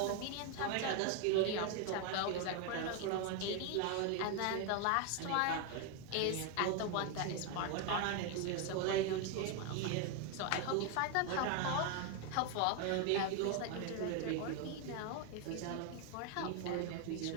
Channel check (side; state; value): both; different; correlation 0.01